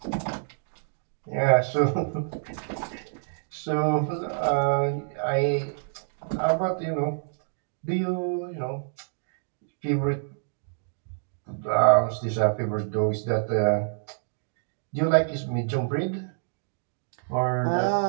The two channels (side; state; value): left; silent; digital silence